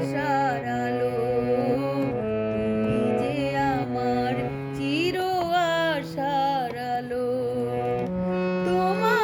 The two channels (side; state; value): both; identical; correlation 1.00